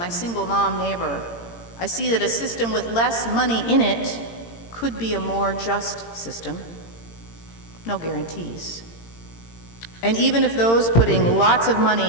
single mom neighbor. I see that a system with less money in it could be a more just system. No guarantees. And even if those putting lots of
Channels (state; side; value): late; right; 18 ms